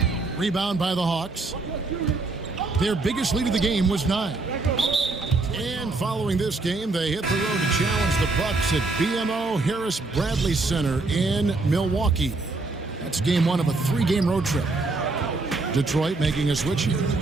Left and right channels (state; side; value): quieter; left; 3.4 dB